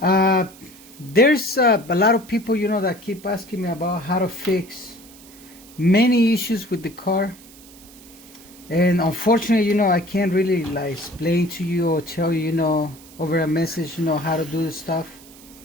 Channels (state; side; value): noise; right; hiss, 22 dB below the sound